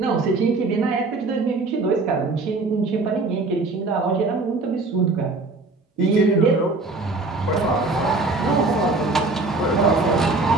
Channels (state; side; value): quieter; left; 3.4 dB